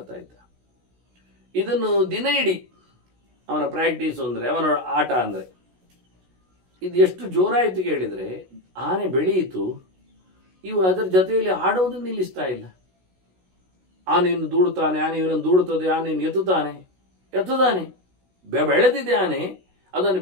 ಇದ್ದ. ಇದನ್ನು ದಿನ ಇಡೀ ಅವನ ಪ್ರಾಕ್ಟೀಸ್ ಅಂದರೆ, ಅವನ ಆಟ ಅಂದರೆ ಇದು ಎಷ್ಟು ಜೋರಾಯಿತು ಕೇಳಿದರೆ, ಆನೆ ಬೆಳೆಯಿತು, ಇವು ಅದರ ಜೊತೆಯಲ್ಲಿ ಆಡೋದನ್ನು ನಿಲ್ಲಿಸ್ತಾ ಇಲ್ಲ. ಆನೆಯನ್ನು ದೂಡುತ್ತಾನೆ, ಆನೆ ಇವನನ್ನು ದೂಡುತ್ತದೆ, ಆನೆಯನ್ನು ಎತ್ತುತ್ತಾನೆ, ಬೆಳೆದಿದೆ ಆನೆ. ಅದನ್ನು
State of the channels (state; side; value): late; left; 16 ms